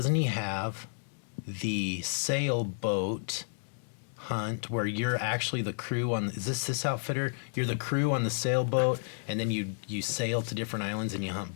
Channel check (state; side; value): silent; right; digital silence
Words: he have the sailboat hunt where you're actually the crew on, is this outfitter? You're the crew on the sailboat, and then you sail to different islands and you hunt